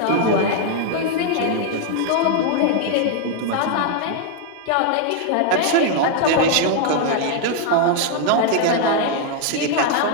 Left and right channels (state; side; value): different; both; correlation 0.00